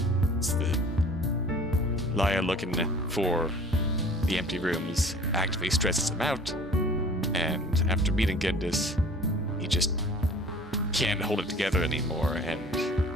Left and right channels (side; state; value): both; normal; correlation 0.47